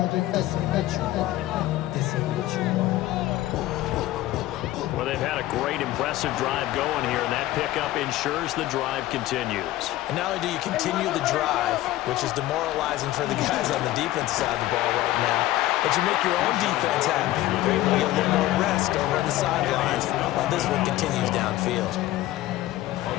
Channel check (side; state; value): right; quieter; 15.7 dB